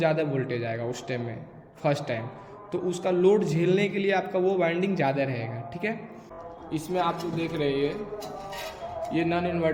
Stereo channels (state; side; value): identical; both; correlation 1.00